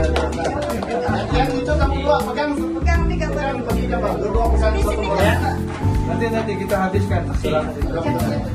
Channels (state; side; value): identical; both; correlation 1.00